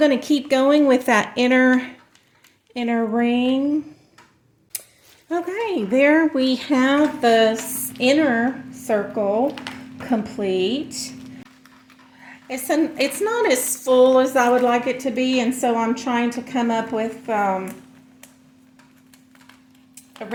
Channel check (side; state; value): both; identical; correlation 1.00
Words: to keep going with that inner ring. Okay, there we have the inner circle complete. It's not as full as I would like it to be, and so I'm trying to come up with a